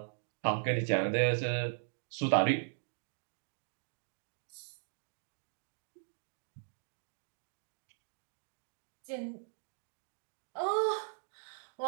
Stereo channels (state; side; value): silent; left; digital silence